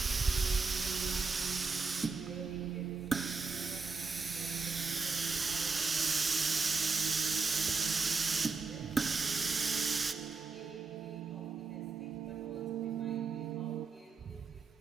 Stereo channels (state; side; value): quieter; left; 4.5 dB